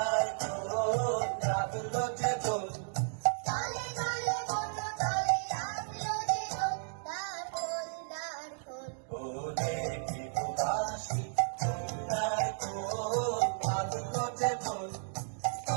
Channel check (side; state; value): left; silent; digital silence